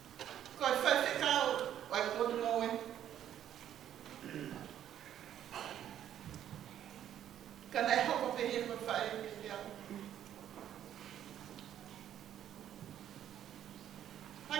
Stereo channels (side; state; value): left; quieter; 10.7 dB